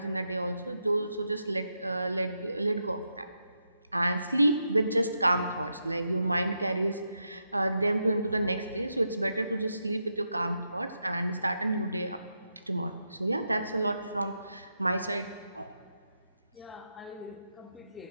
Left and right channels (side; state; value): both; inverted; correlation -0.84